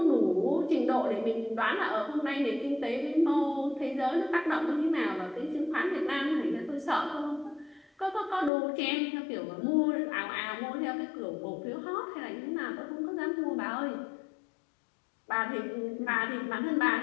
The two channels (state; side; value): drops out; right; at 8.5 s